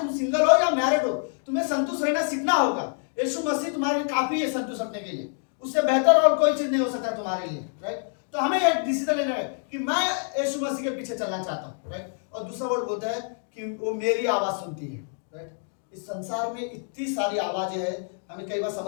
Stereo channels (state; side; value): silent; right; 56 dB below the other